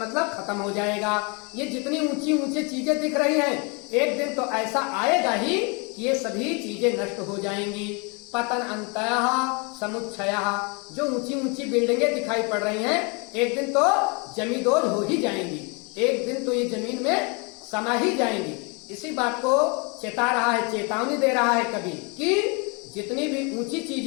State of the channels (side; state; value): right; quieter; 32.0 dB